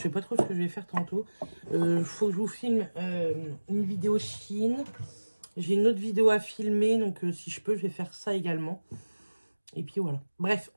sais pas trop ce que je vais faire tantôt. Faut que je vous filme une vidéo Chine. J'ai une autre vidéo à filmer, donc si je peux, je vais faire ça également. Et puis voilà. Bref,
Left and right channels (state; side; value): inverted; both; correlation -1.00